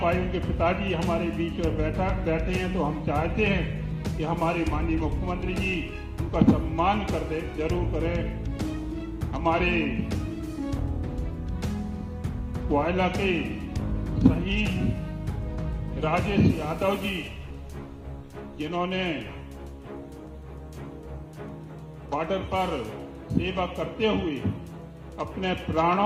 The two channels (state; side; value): identical; both; correlation 1.00